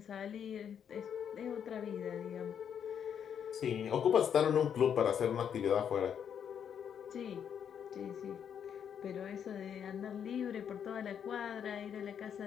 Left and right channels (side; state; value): right; quieter; 8.3 dB